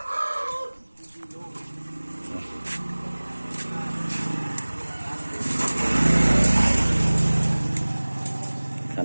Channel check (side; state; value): both; inverted; correlation -1.00